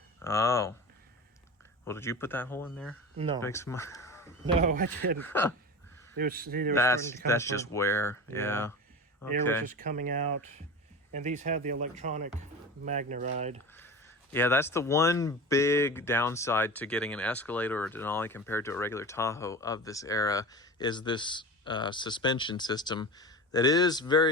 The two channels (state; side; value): normal; both; correlation 0.31